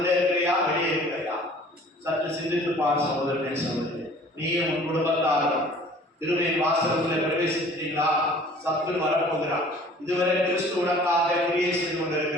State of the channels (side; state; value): both; normal; correlation 0.50